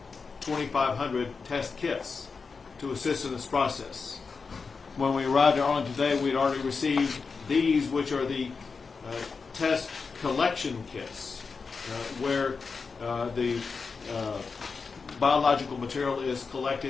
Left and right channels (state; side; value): quieter; right; 4.9 dB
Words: 2,500 test kits to assist in this process. When we arrived in Arlington today, we had already received these, which are the test collection kits, where the biological material is